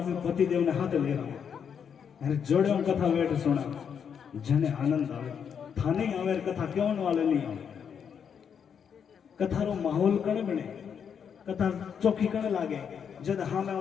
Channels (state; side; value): quieter; right; 7.4 dB